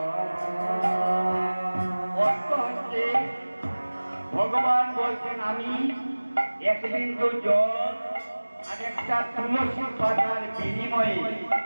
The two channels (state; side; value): inverted; both; correlation -1.00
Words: ভগবান বলছেন আমি এক বিন্দু জল আর একটা তুলসী পাতার বিনিময়ে